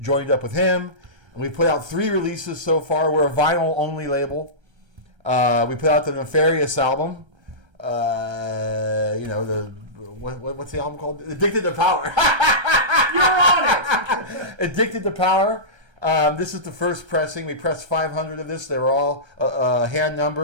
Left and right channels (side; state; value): left; late; 1.3 ms